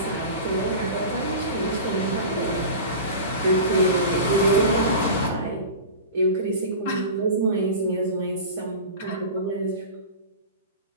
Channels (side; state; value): both; inverted; correlation -0.32